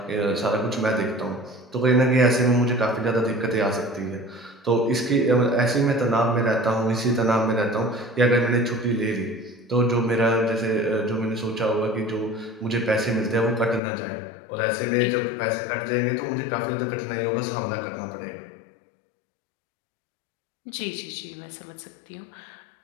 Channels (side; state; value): right; drops out; at 13.8 s